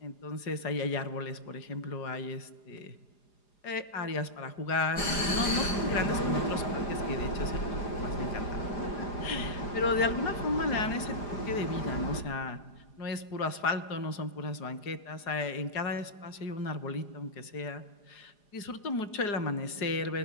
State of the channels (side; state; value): right; late; 4.9 ms